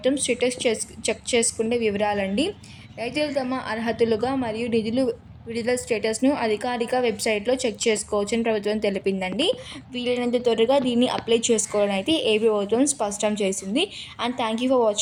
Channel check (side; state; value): both; identical; correlation 1.00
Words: స్టేటస్ చెక్ చేసుకునే వివరాలండి. రైతులు తమ అర్హతలుగా మరియు నిధులు విడుదల స్టేటస్ను అధికారిక వెబ్సైట్లో చెక్ చేసుకోవచ్చని ప్రభుత్వం తెలిపిందండి. వీలైనంత త్వరగా దీన్ని అప్లై చేసుకోవాలని అయితే ఏపీ ప్రభుత్వం స్పష్టం చేసింది. And thank you for